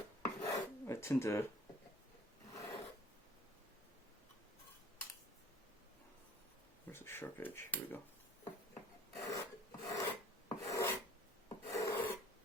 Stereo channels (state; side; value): normal; both; correlation 0.52